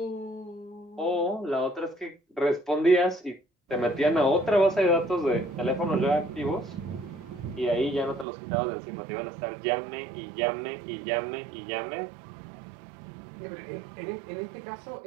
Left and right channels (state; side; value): drops out; left; at 8.2 s